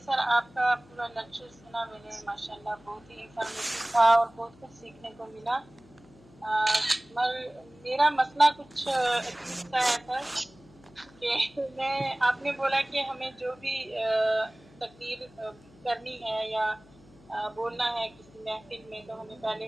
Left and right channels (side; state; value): left; noise; hum, 26 dB below the sound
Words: آپ کا پورا لیکچر سنا میں نے ماشاءاللہ بہت ہی انفارمیٹیو تھا اور بہت کچھ سیکھنے کو ملا. میرا مسئلہ کچھ عجیب سا ہے سر کہ آپ نے بولا کہ ہمیں جو بھی تقریر کرنی ہے یا بولنا ہے کسی محفل میں تو ہمیں پہلے